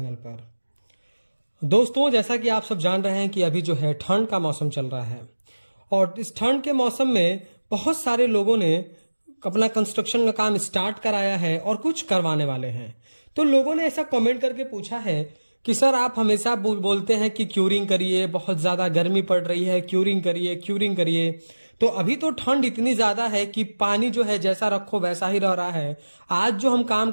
पर। दोस्तों, जैसा कि आप सब जान रहे हैं कि अभी जो है ठंड का मौसम चल रहा है और इस ठंड के मौसम में बहुत सारे लोगों ने अपना कंस्ट्रक्शन का काम स्टार्ट कराया है और कुछ करवाने वाले हैं। तो लोगों ने ऐसा कमेंट करके पूछा है कि सर आप हमेशा बोलते हैं कि क्यूरिंग करिए, बहुत ज़्यादा गर्मी पड़ रही है, क्यूरिंग करिए क्यूरिंग करिए। तो अभी तो ठंड इतनी ज़्यादा है कि पानी जो है जैसा रखो वैसा ही रह रहा है। आज जो हम काम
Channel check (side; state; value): both; inverted; correlation -1.00